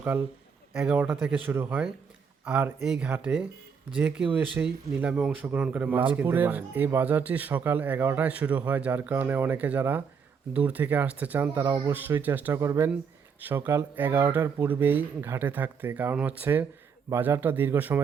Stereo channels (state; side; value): quieter; left; 6.3 dB